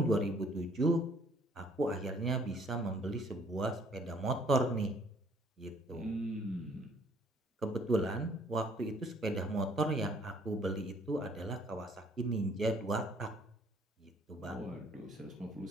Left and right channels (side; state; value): both; normal; correlation 0.60